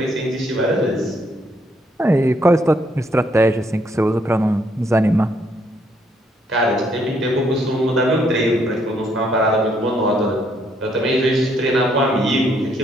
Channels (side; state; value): both; normal; correlation 0.71